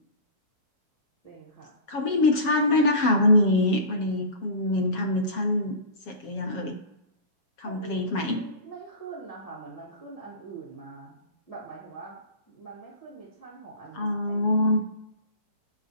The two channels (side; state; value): right; late; 7.3 ms